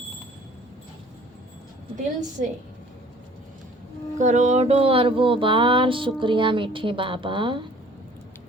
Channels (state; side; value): normal; both; correlation 0.52